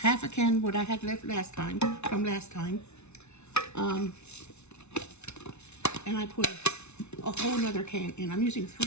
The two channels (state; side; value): late; right; 0.81 ms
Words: half a can what I had left from last time, and I put a whole nother can in. I'm using